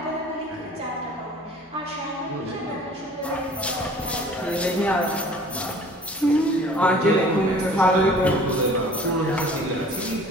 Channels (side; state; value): both; normal; correlation 0.49